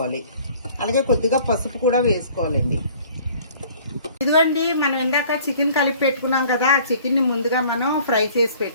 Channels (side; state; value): both; inverted; correlation -0.52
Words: అలాగే కొద్దిగా పసుపు కూడా వేసుకోవాలండి. ఇదిగోండి, మనం ఇందాక చికెన్ కలిపి పెట్టుకున్నాం కదా, ఆ చికెన్ ని ముందుగా మనం ఫ్రై చేసి